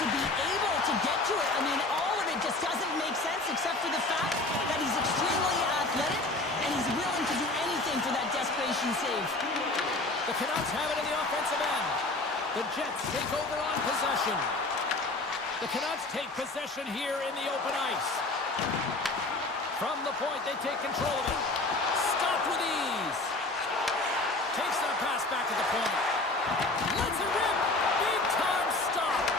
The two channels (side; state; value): right; quieter; 3.0 dB